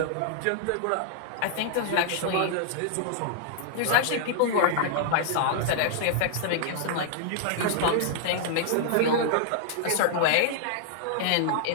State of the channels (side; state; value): both; different; correlation -0.01